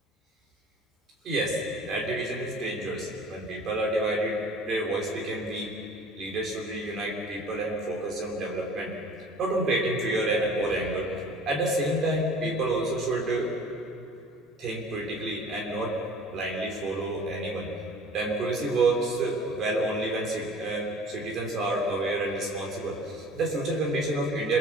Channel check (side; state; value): both; normal; correlation 0.46